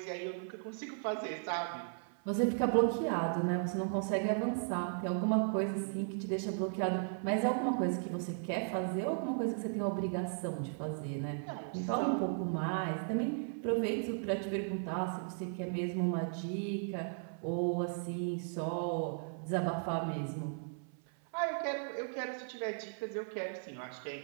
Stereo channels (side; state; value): left; silent; 54 dB below the other